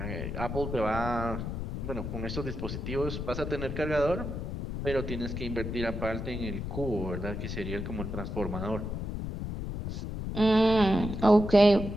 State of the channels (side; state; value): left; noise; rumble, 5 dB below the sound